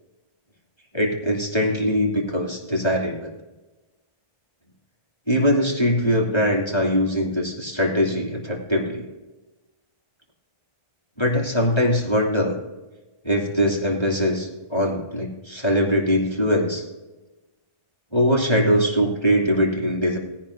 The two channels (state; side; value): late; right; 1.3 ms